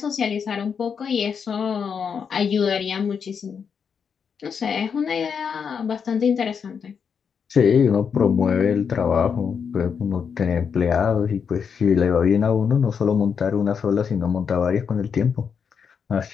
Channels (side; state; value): right; quieter; 6.6 dB